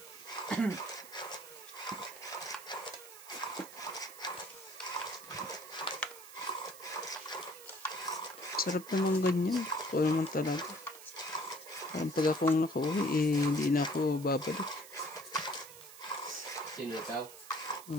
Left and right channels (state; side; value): noise; right; hiss, 16 dB below the sound